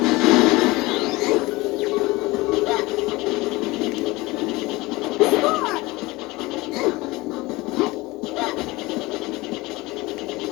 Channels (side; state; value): right; quieter; 21.5 dB